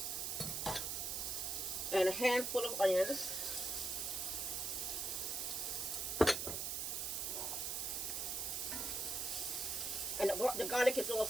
and a handful of onions. And the garlic is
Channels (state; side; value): noise; right; hiss, 1 dB below the sound